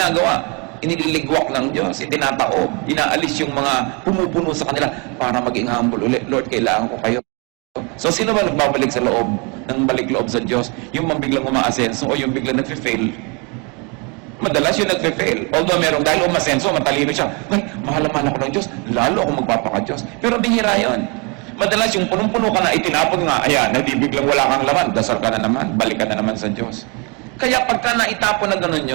Iniligwak ng Diyos, itinataob, inaalis yung mga pumupuno sa kanila para maging humble ulit. Lord, kailangan ko kayo. So, sino ba nagbabalik sa loob ng balik loob sa Diyos? Yung biglang umaasenso o yung biglang nagfe-fail? Madalas yung nagfe-fail. Although merong dahil umasenso, matalino siya. Ay, mahal-mahal ako ng Diyos. Lalo ako magpapaka-Diyos. Pero bihira yun. Madalas yung punong-puno ka na, itinapon nga, ayan, hindi biglang wala kang laman, dasal ka na naman, balik ka na naman sa Diyos. Kaya pagka naitapon na gano'n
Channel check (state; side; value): quieter; left; 31.8 dB